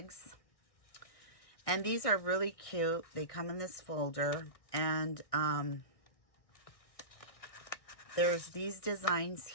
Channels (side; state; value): right; late; 1.6 ms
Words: and these are really cute. They come in this folder, and there's these designs